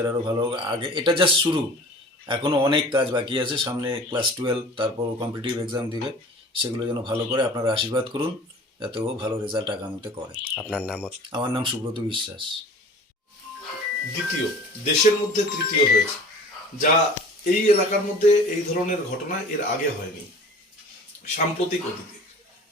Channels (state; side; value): normal; both; correlation 0.43